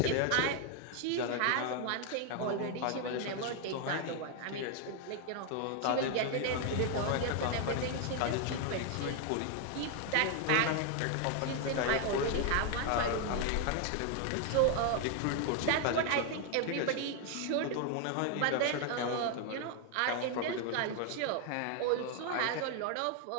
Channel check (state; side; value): different; both; correlation 0.00